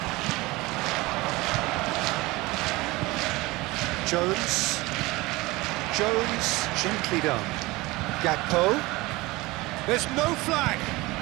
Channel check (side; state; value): left; quieter; 21.4 dB